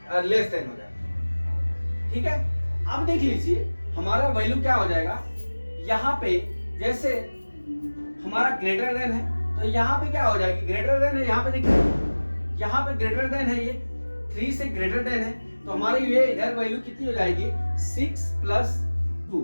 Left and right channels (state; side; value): inverted; both; correlation -1.00